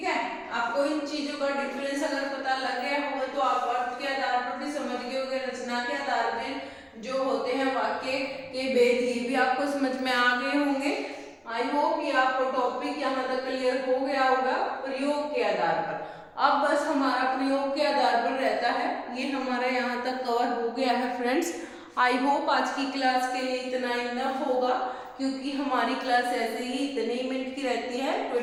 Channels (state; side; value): identical; both; correlation 1.00